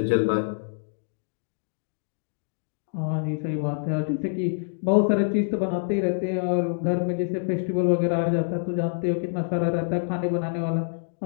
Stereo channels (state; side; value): silent; right; digital silence